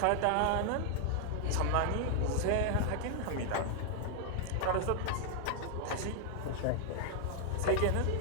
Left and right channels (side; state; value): both; different; correlation 0.00